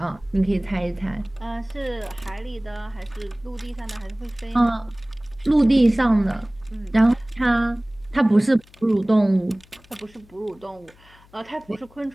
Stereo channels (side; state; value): left; noise; hum, 27 dB below the sound